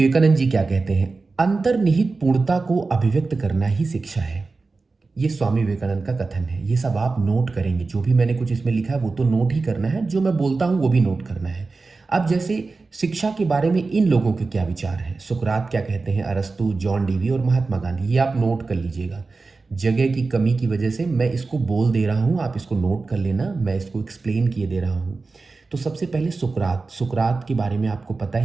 जी क्या कहते हैं, अंतर्निहित पूर्णता को अभिव्यक्त करना ही शिक्षा है। ये स्वामी विवेकानंद का कथन है। ये सब आप नोट करेंगे, जो भी मैंने कुछ इसमें लिखा है वो तो नोट ही करना है, जो मैं बोलता हूँ वो भी नोट करना है। अब जैसे शिक्षा के बारे में इन लोगों के क्या विचार हैं, सुकरात क्या कहते हैं, अरस्तु, जॉन डीवी और महात्मा गांधी, ये आप नोट कर लीजिएगा। जगह की कमी की वजह से मैं इसको बोल दे रहा हूँ, आप इसको नोट कर लेना, मैं इसको एक्सप्लेन किए दे रहा हूँ। तो सबसे पहले सुकरात, सुकरात के बारे में आपको पता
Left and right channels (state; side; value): quieter; left; 3.9 dB